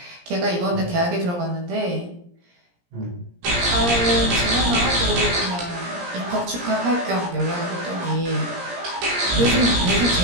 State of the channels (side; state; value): left; late; 17 ms